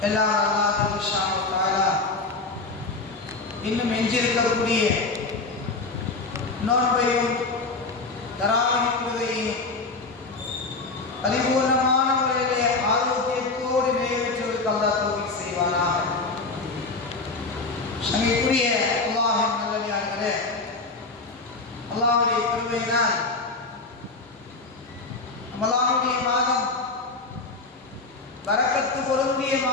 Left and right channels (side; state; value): right; quieter; 3.7 dB